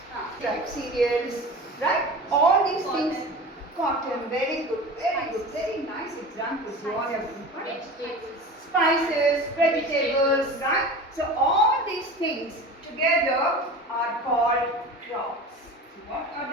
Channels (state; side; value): normal; both; correlation 0.34